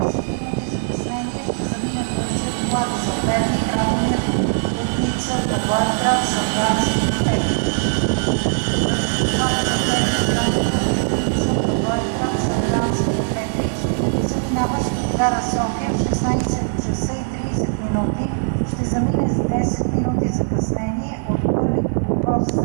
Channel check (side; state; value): left; silent; 59 dB below the other